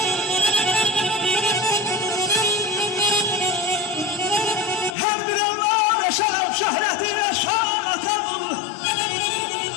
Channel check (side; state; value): right; drops out; at 5.0 s